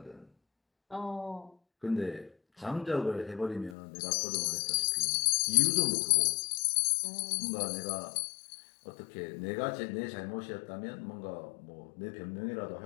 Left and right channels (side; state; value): right; drops out; at 3.8 s